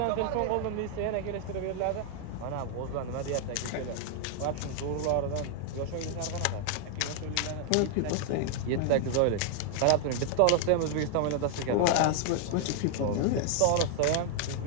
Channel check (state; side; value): different; both; correlation 0.00